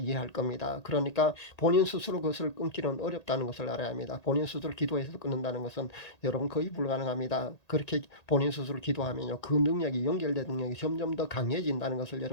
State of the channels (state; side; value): late; right; 1.8 ms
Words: 겁니다. 그러니까 본인 스스로 그것을 끊기는 어렵다는 것을 알아야 합니다. 본인 스스로 기도해서 끊는다는 것은 여러분 거의 불가능합니다. 그렇게 본인 스스로 기도하면요, 그 능력이, 연결된 능력이 점점 더 강해진다는 것을